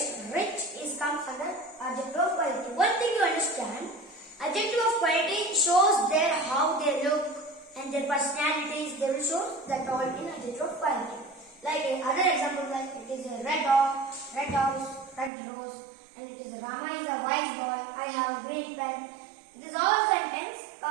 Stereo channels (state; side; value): drops out; left; at 15.3 s